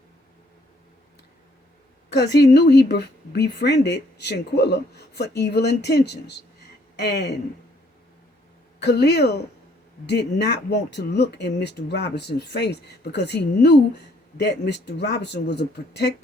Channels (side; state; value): both; normal; correlation 0.65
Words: Because he knew he befriended Shanquella for evil intentions. And Khalil did not want to look in Mr. Robinson's face because he knew that Mr. Robinson was a